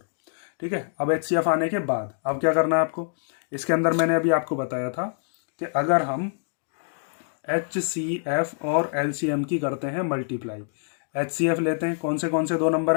ठीक है, अब HCF आने के बाद अब क्या करना है आपको, इसके अंदर मैंने अभी आपको बताया था कि अगर हम HCF और LCM की करते हैं मल्टीप्लाई, HCF लेते हैं, कौन से दो नंबर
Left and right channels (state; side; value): silent; right; digital silence